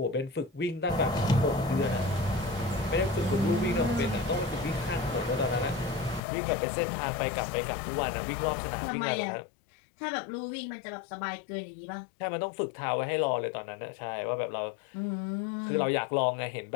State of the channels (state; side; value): drops out; right; at 6.2 s